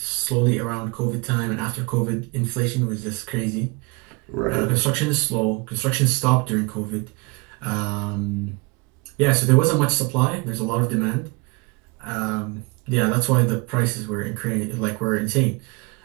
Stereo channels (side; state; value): left; quieter; 28.0 dB